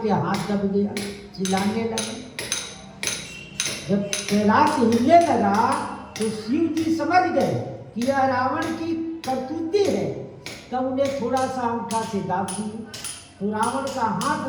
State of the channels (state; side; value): identical; both; correlation 1.00